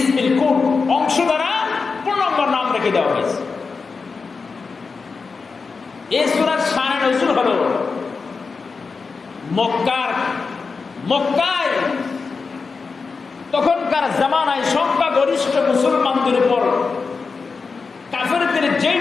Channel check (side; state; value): right; quieter; 4.7 dB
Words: কুল, অংশ দ্বারা পূর্ণাঙ্গ নাম রেখে দেওয়া হয়েছে। এই সূরার শানে নজুল হলো মক্কায় তখনকার জামানায় সংখ্যাগরিষ্ঠ মুসলমানদের উপর কাফেরদের যেই